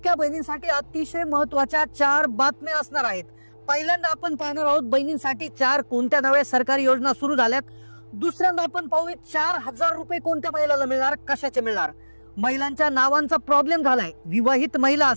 बहिणींसाठी अतिशय महत्त्वाच्या 4 बातम्या असणार आहेत। पहिल्यांदा आपण पाहणार आहोत बहिणींसाठी 4 कोणत्या नव्या सरकारी योजना सुरू झाल्यात। दुसऱ्यांदा आपण पाहूया 4000 रुपये कोणत्या महिलाला मिळणार, कशाचे मिळणार। महिलांच्या नावांचा प्रॉब्लेम झालाय। विवाहित महिला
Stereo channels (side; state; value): both; inverted; correlation -1.00